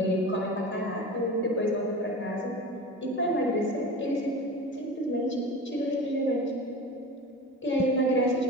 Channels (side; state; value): both; normal; correlation 0.32